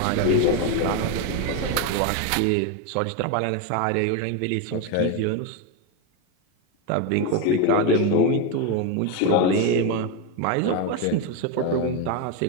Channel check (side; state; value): both; different; correlation 0.03